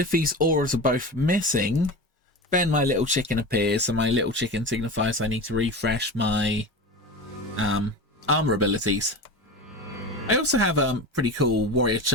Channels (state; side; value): normal; both; correlation 0.28